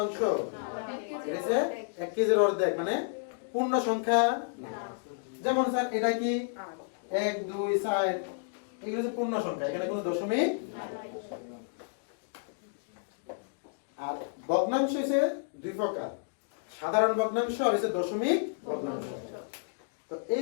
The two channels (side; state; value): right; silent; digital silence